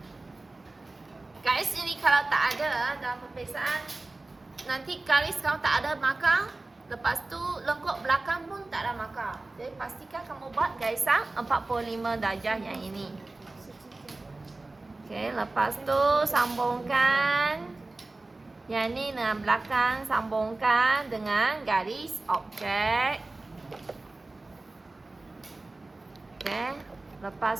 Garis ini kalau tak ada dalam peperiksaan, nanti garis kamu tak ada markah, lepas tu lengkuk belakang pun tak ada markah. Jadi pastikan kamu buat garisan 45 darjah yang ini. Okey, lepas tu sambungkan yang ni dengan belakang, sambungkan dengan garis objek. Okey.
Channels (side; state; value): left; quieter; 3.1 dB